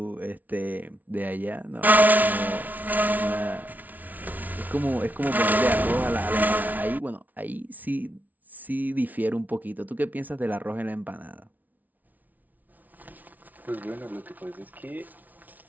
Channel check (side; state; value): left; late; 0.077 ms